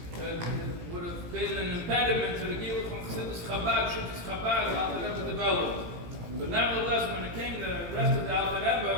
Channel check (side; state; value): left; late; 17 ms